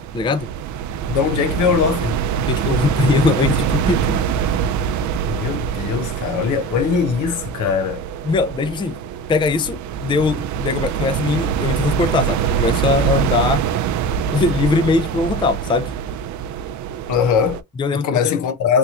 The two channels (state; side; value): normal; both; correlation 0.31